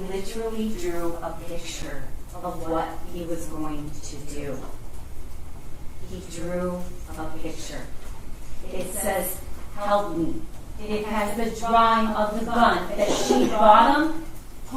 literally drew a picture of what he was going to do. He drew a picture. It says, "Help me." It has the drawing of the gun that she bought him,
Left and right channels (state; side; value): identical; both; correlation 1.00